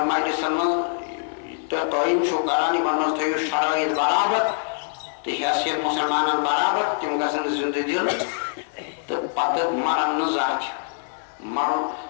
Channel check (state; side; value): silent; right; 57 dB below the other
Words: مجلسن منٛز تہٕ قٲیِم چھُو کران یِمن منٛز تھٲیِو شرٲیِط برابر تہٕ حیثیت مُسلمانن برابر تِم گژھن زندٕ دِل تہٕ پتہٕ مرن نہٕ زانٛہہ تہِ مرُن